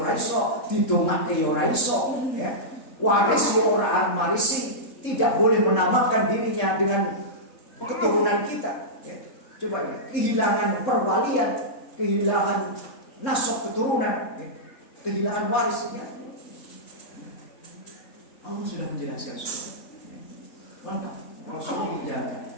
iso, didongake ya ora iso, ya. Waris ya ora marisi, tidak boleh menamakan dirinya dengan keturunan kita, ya. Coba ya, kehilangan perwalian, kehilangan nasab keturunan, ya. Kehilangan waris, ya. Allah sudah menjelaskan semua. Lengkap. Rasulullah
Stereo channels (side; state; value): right; late; 3.7 ms